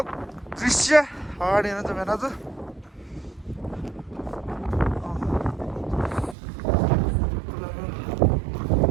दृश्य अगाडि हेर्नु त भेना त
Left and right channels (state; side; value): drops out; left; at 6.4 s